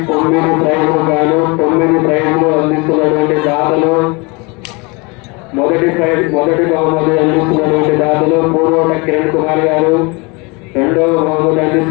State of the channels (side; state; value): right; quieter; 28.0 dB